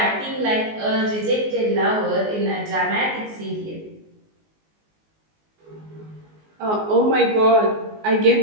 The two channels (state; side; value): late; left; 19 ms